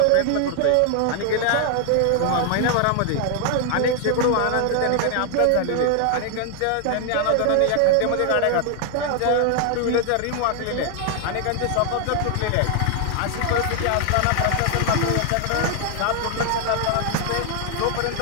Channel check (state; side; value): different; both; correlation 0.00